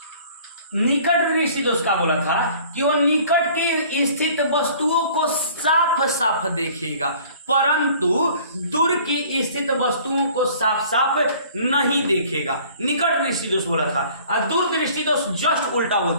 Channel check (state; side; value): inverted; both; correlation -0.51